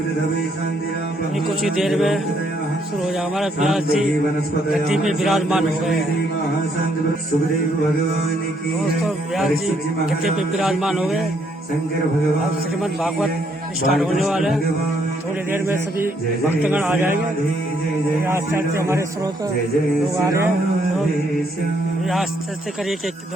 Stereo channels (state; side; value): normal; both; correlation 0.71